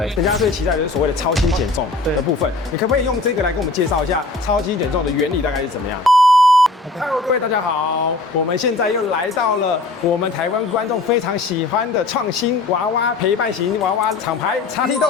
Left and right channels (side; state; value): right; quieter; 3.4 dB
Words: 人家最期待的就是所谓的超轻减重的部分。你可不可以用这个来跟我们介绍一下超轻减重的原理大概是怎么样？Hello， 各位大家好，我们现在又来到了我们台湾观众非常喜欢的创新娃娃陪伴型娃娃厂牌XT